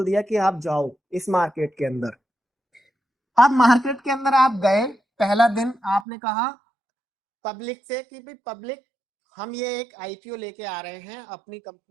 दिया कि आप जाओ इस मार्केट के अंदर। अब मार्केट के अंदर आप गए, पहला दिन आपने कहा पब्लिक से कि भाई पब्लिक, हम ये एक आईपीओ लेके आ रहे हैं अपनी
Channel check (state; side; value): drops out; left; at 6.1 s